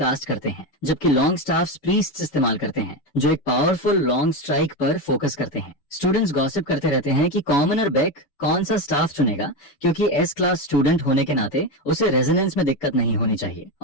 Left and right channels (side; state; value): right; late; 6.9 ms